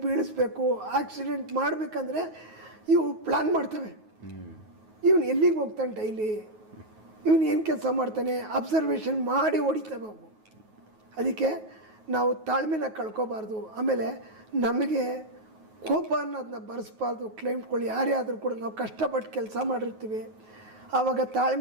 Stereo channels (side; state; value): left; late; 9.4 ms